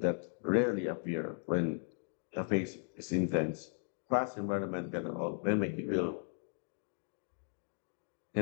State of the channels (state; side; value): silent; right; 53 dB below the other